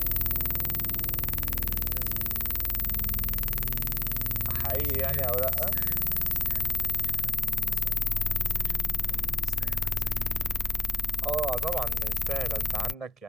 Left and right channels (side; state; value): both; normal; correlation 0.94